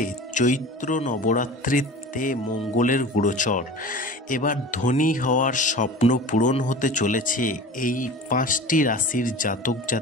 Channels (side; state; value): both; normal; correlation 0.37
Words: চৈত্র নবরাত্রিতে মঙ্গলের গোচর, এবার ধনী হওয়ার স্বপ্ন পূরণ হতে চলেছে এই 5টি রাশির জাতক